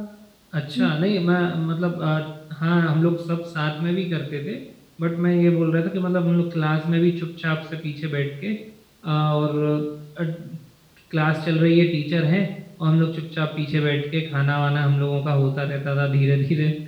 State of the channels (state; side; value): identical; both; correlation 1.00